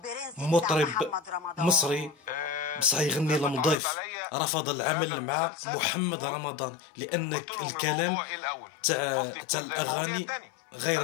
ومطرب مصري، بصح يغني لمضيف، رفض العمل مع محمد رمضان لأن الكلام تاع الأغاني غير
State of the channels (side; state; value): right; drops out; at 3.8 s